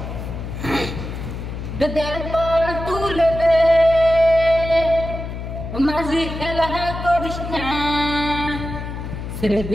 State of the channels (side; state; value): left; noise; hum, 7 dB below the sound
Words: দরবার তুলে দে মাঝি খেলা করিস না ছেড়ে